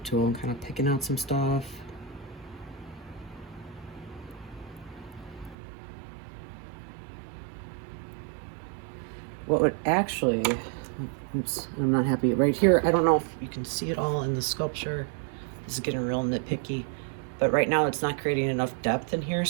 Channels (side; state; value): left; drops out; at 5.6 s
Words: tool and kind of picking out some stuff. What would actually, oops, I'm not happy. Right here, I don't know if you can see it all in the sculpture. This is getting real nitpicky. But right now it's not creating enough depth in here,